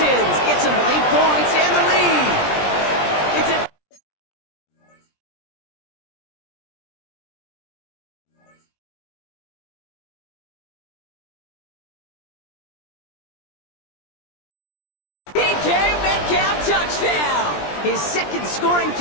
get some late points and the lead. It's a DK Metcalf touchdown. His 2nd scoring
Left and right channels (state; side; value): late; right; 20 ms